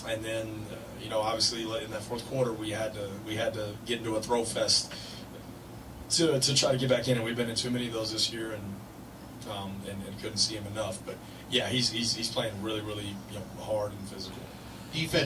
and then obviously in that fourth quarter we had to get into a throw fest to try to get back in, and we've been in too many of those this year, and couldn't see him enough. But yeah, he's playing really hard and physical.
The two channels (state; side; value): identical; both; correlation 1.00